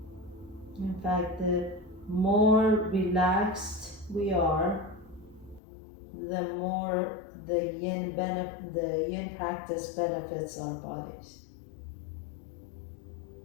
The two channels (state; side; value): drops out; right; at 5.6 s